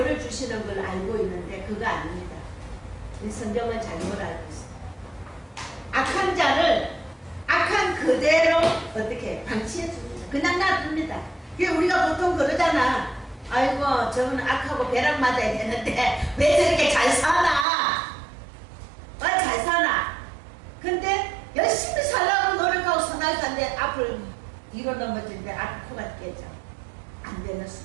주시는 걸 알고 있는데 그거 아닙니다. 성경은 잘못 알고 있습니다. 악한 자를 악한 그대로 어떻게 방치해 줍니다. 그냥 놔둡니다. 우리가 보통 그러잖아. 아이고 저는 악하고 벼락 맞아야 되는데 왜 저렇게 잘 살아? 잘 잘 사나? 근데 열심히 살라고 노력하고 선할 산데 앞을 뒤로 넘어지는데 앞 코가 깨져. 안 되는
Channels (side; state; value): left; drops out; at 17.7 s